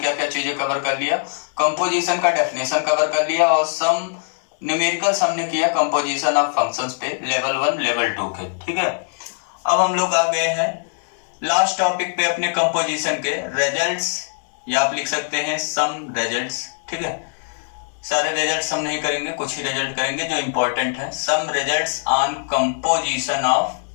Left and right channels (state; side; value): silent; right; digital silence